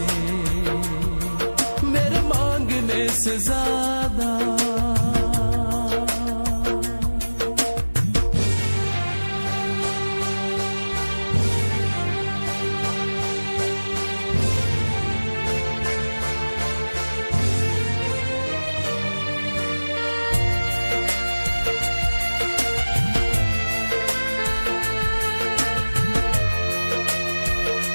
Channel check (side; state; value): both; inverted; correlation -1.00